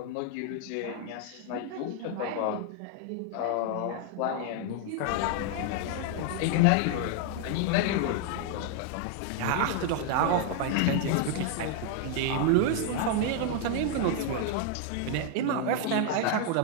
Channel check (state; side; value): different; both; correlation 0.00